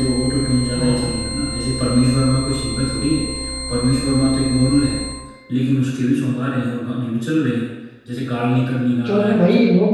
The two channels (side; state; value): both; identical; correlation 1.00